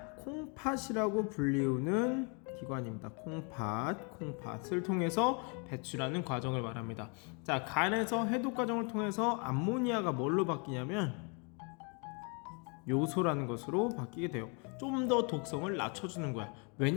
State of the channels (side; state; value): right; quieter; 35.3 dB